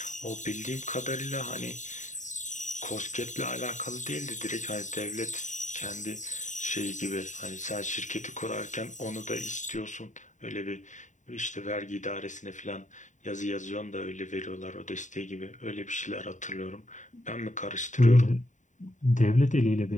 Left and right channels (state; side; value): late; right; 0.36 ms